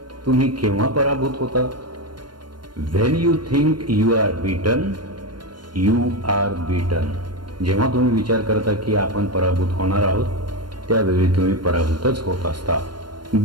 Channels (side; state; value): left; late; 0.71 ms